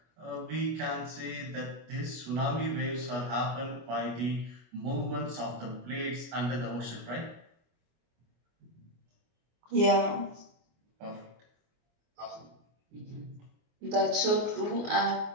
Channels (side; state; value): left; late; 24 ms